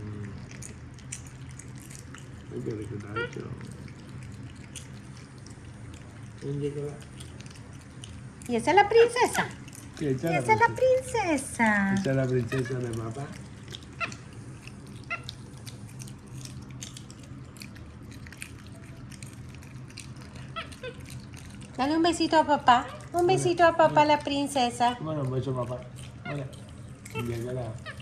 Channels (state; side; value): identical; both; correlation 1.00